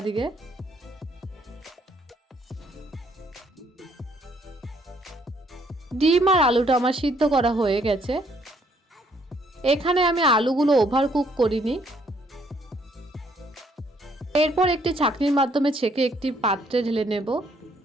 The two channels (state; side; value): normal; both; correlation 0.67